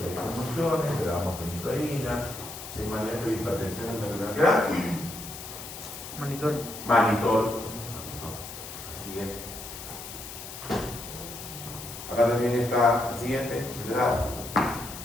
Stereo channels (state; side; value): noise; left; hiss, 11 dB below the sound